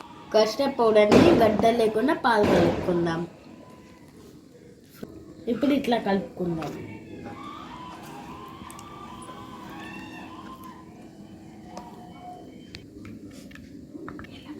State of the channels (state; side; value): identical; both; correlation 1.00